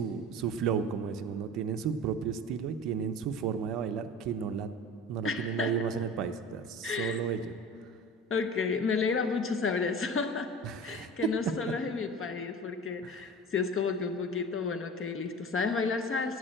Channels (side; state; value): both; normal; correlation 0.36